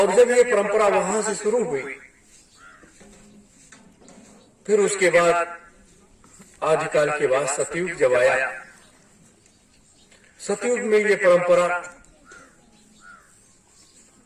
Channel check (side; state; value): both; identical; correlation 1.00